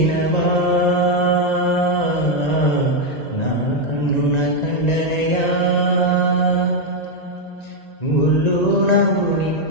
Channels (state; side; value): late; right; 1.9 ms